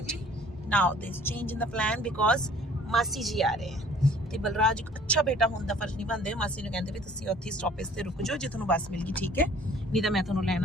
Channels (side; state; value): both; normal; correlation 0.53